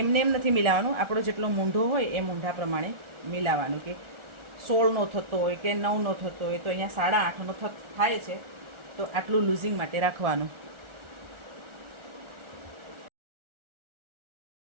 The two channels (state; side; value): late; left; 1.4 ms